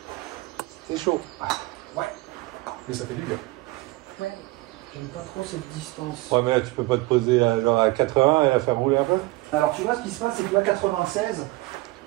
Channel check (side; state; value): left; quieter; 21.1 dB